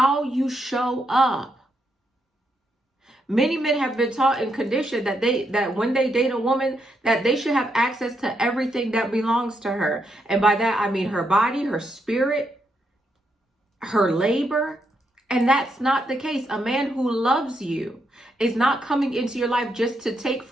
you show up. Many men have been taught and conditioned that when they date a woman, that they should have access to everything that belongs to her. And by that, I mean her body, her spirit, her labor. And that's not the case. A man who loves you is not coming into your life just to take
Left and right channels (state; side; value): normal; both; correlation 0.80